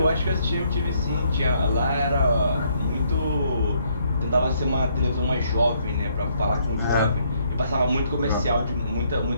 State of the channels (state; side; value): inverted; both; correlation -0.69